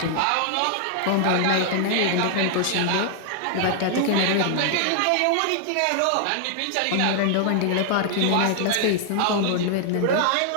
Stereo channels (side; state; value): both; different; correlation 0.00